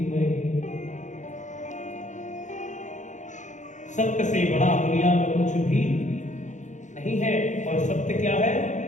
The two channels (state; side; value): late; right; 0.35 ms